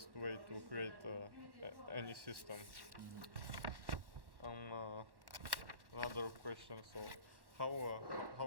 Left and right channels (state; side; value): late; left; 1.1 ms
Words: way to create any system. Another question. So, how